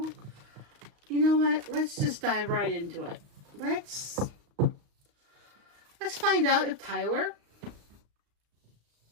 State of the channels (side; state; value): left; late; 35 ms